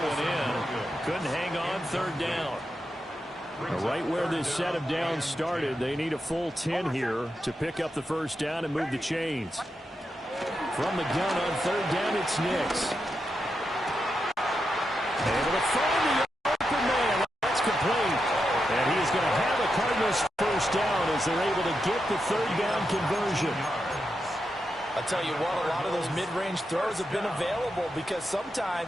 one in. Couldn't hang on, third down. Right where this set of downs started, they need a full 10 here to pick up the first down and move the chains. From the gun on third down, it's Nix. Able to find the open man. That's complete. And he is going to have the Cardinals first down as they're able to get the third down conversion. I'll tell you what, a lot of those mid-range throws have been available because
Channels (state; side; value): normal; both; correlation 0.86